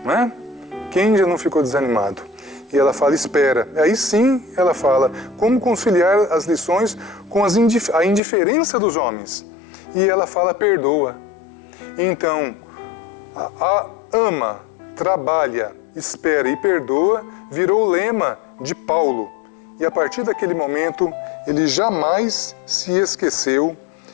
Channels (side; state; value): right; drops out; at 8.2 s